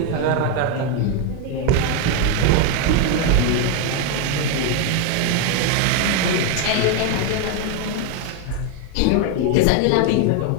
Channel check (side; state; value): both; different; correlation 0.01